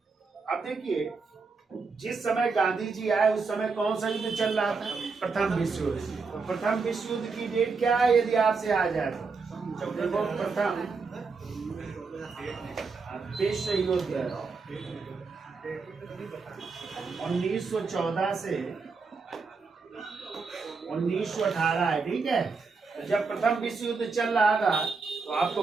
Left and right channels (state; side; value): quieter; left; 4.6 dB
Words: अब देखिए जिस समय गांधी जी आए उस समय कौन सा युद्ध चल रहा था? प्रथम विश्व युद्ध। तो प्रथम विश्व युद्ध की डेट क्या है यदि आपसे आ जाए तो? देखो प्रथम विश्व युद्ध 1914 से 1918 है। ठीक है। तो जब प्रथम विश्व युद्ध चल रहा था तो आपको